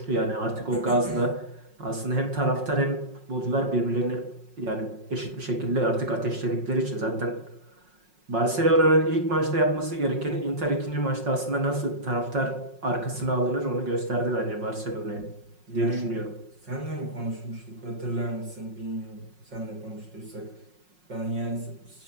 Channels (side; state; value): left; late; 5.5 ms